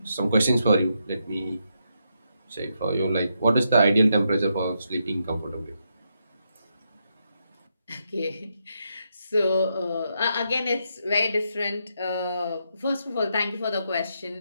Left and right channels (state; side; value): inverted; both; correlation -0.81